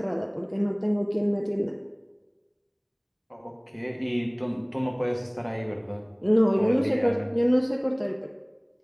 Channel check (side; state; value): both; identical; correlation 1.00